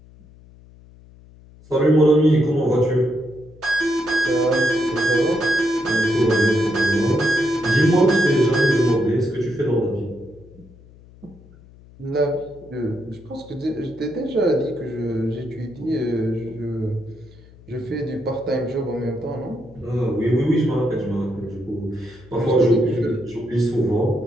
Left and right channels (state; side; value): noise; left; hum, 23 dB below the sound